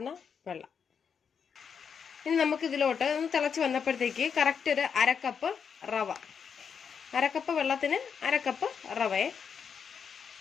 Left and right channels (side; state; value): right; quieter; 6.8 dB